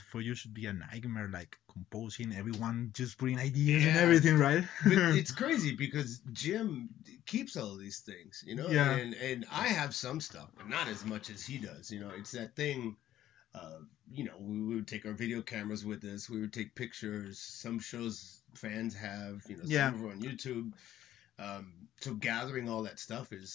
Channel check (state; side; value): quieter; right; 12.7 dB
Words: for you should be a nightmare, composing, everyone just bringing ideas and everything, right? But it's crazy because Jim keeps all of these things, Yeah. And I have some stuff, but not as much as he does. It's that thing. We would take our video cameras with us. We would take pictures. Some shows fans have, some of them on YouTube. So gathering all that stuff